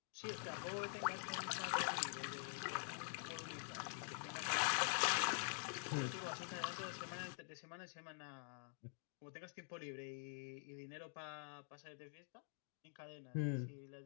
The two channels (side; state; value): right; silent; digital silence